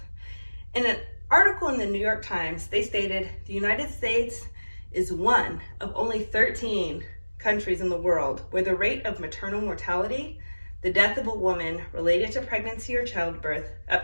In an article in the New York Times, they stated the United States is one of only 13 countries in the world where the rate of maternal mortality, the death of a woman related to pregnancy or childbirth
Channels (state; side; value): inverted; both; correlation -1.00